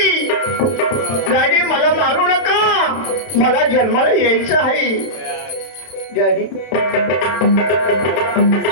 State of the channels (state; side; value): late; right; 31 ms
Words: डॅडी मला मारू नका मला जन्माला यायचं आहे डॅडी